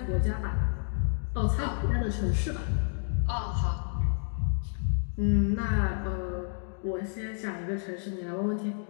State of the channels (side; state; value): right; silent; digital silence